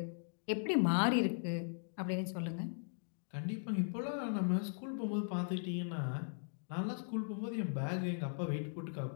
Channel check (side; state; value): right; silent; digital silence